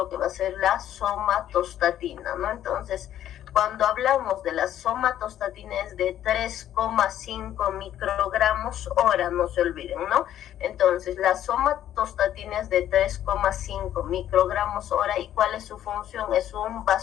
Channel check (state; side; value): quieter; right; 11.5 dB